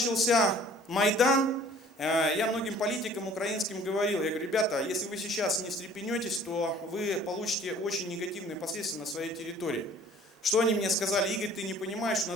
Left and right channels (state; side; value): normal; both; correlation 0.52